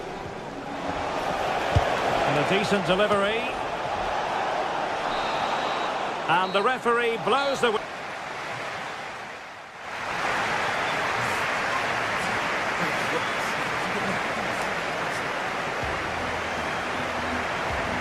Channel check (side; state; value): both; identical; correlation 1.00